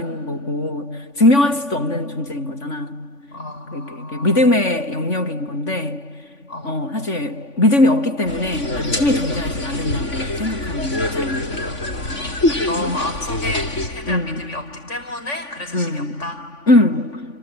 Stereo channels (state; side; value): late; right; 3.5 ms